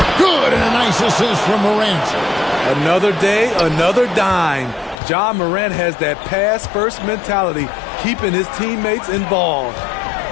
Good, and a nice assist from Morant. Another day, another dime. John Morant has that pass-first mentality, keeping his teammates involved.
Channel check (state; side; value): drops out; right; at 5.0 s